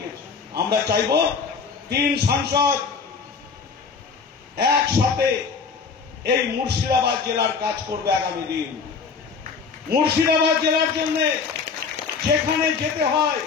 আমরা চাইব 3 সাংসদ একসাথে এই মুর্শিদাবাদ জেলার কাজ করবে আগামী দিন। মুর্শিদাবাদ জেলার জন্য যেখানে যেতে হয়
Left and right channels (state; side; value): quieter; right; 5.3 dB